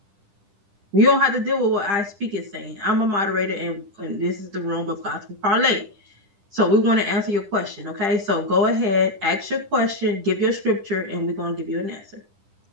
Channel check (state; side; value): late; left; 10 ms